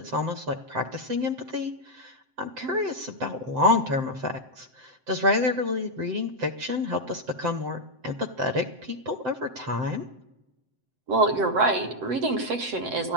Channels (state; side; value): late; left; 7.8 ms